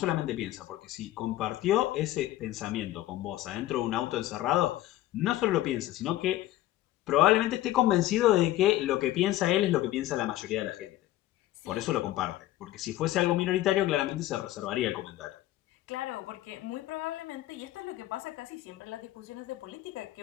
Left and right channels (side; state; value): right; quieter; 15.1 dB